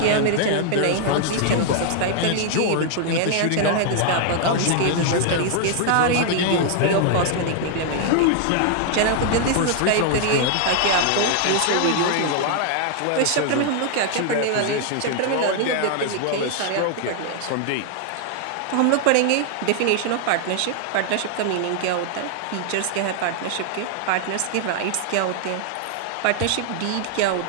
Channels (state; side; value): different; both; correlation 0.00